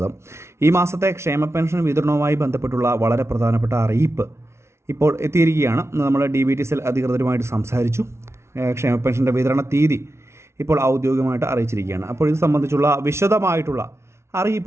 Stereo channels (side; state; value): left; late; 0.13 ms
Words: ഈ മാസത്തെ ക്ഷേമ പെൻഷൻ വിതരണവുമായി ബന്ധപ്പെട്ടുള്ള വളരെ പ്രധാനപ്പെട്ട അറിയിപ്പ് ഇപ്പോൾ എത്തിയിരിക്കുകയാണ്. നമ്മൾ DBT അധികൃതരുമായിട്ട് സംസാരിച്ചു. ക്ഷേമ പെൻഷൻ്റെ വിതരണ തീയതി ഇപ്പോൾ ഔദ്യോഗികമായിട്ട് അറിയിച്ചിരിക്കുകയാണ്. അപ്പോൾ ഇത് സംബന്ധിച്ചുള്ള വിശദമായിട്ടുള്ള